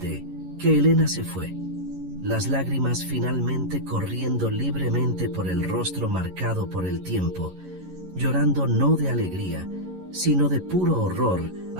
que Elena se fue, las lágrimas finalmente corriendo libremente por el rostro marcado por el tiempo, llorando no de alegría, sino de puro horror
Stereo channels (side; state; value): left; late; 11 ms